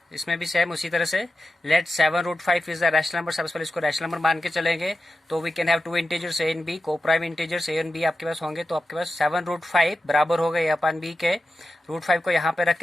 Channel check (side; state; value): both; normal; correlation 0.91